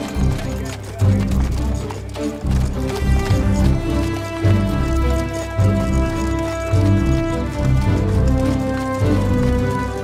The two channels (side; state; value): both; identical; correlation 1.00